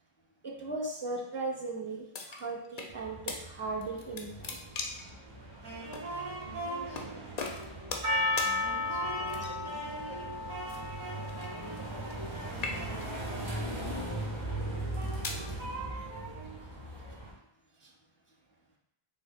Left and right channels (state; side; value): late; right; 1.9 ms